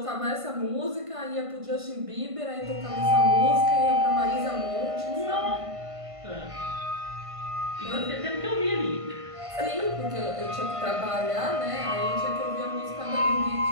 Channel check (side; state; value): left; late; 1.5 ms